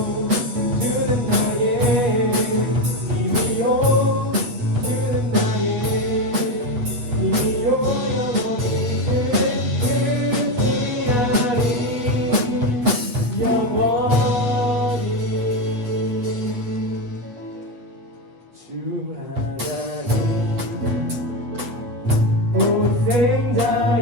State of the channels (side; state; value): left; late; 8.2 ms